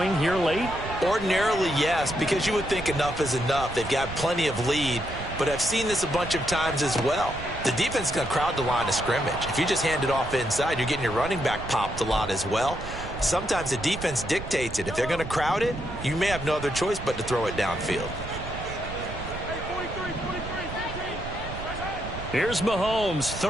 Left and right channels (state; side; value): noise; right; rumble, 10 dB below the sound